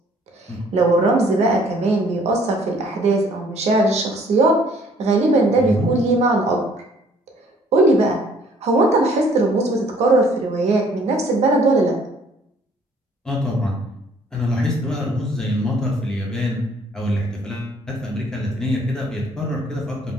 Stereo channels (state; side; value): normal; both; correlation 0.59